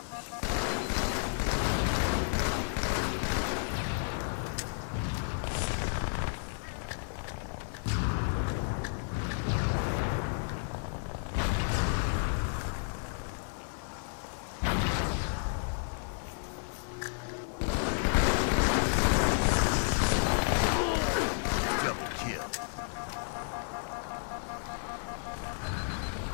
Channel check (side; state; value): right; silent; digital silence